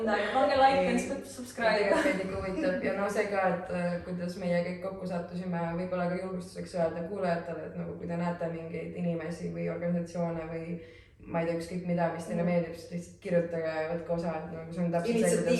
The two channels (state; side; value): identical; both; correlation 1.00